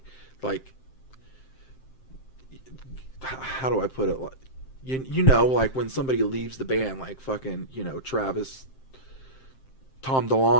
Like, how do I put it? You know, like when somebody leaves the band, like fucking, you know, Tom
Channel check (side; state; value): right; late; 7.6 ms